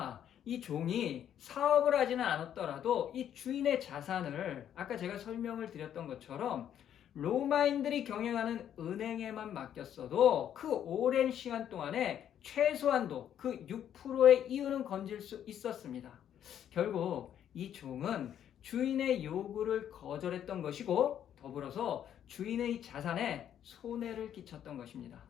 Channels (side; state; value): right; quieter; 10.0 dB